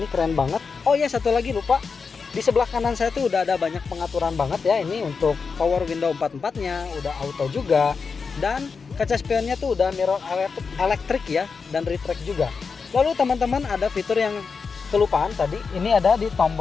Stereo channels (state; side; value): quieter; right; 5.2 dB